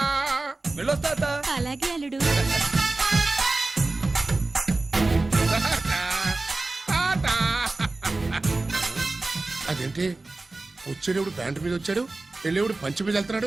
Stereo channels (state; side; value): quieter; left; 3.2 dB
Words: వెళ్ళొస్తా అత్త. అలాగే అల్లుడు. టాటా. అదేంటి వచ్చేటప్పుడు ప్యాంటు మీద వచ్చాడు, వెళ్ళేప్పుడు పంచి మీద